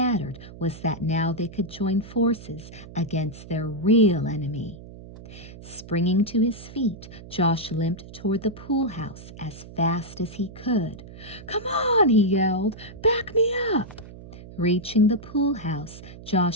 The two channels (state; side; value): noise; right; hum, 16 dB below the sound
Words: was that now they could join forces against their real enemy. Springing to his feet, Josh limped toward the pool house as fast as he could. "Come on," he yelled. "Back me up." Reaching the pool house,